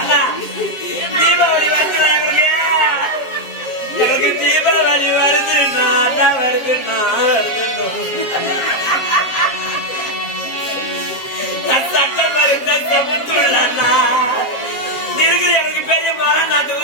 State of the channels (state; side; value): late; right; 7.4 ms